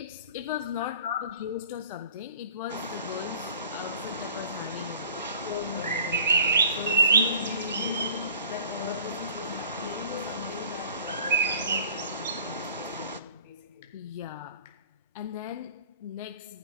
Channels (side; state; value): both; inverted; correlation -0.49